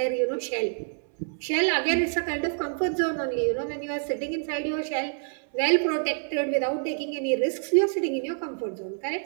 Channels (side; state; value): left; silent; 60 dB below the other